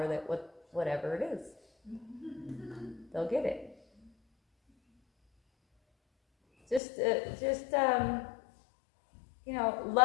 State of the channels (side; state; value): right; drops out; at 6.8 s